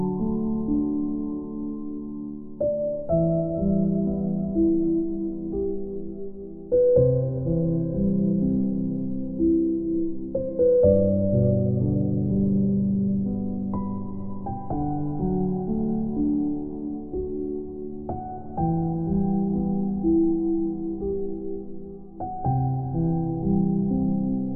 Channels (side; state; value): both; identical; correlation 1.00